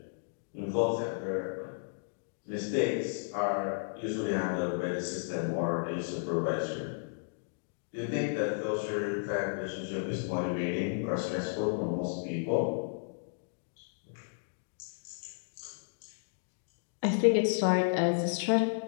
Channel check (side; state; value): right; silent; digital silence